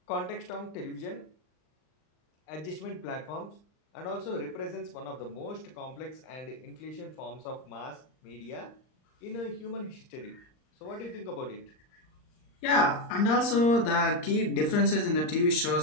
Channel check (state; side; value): late; right; 39 ms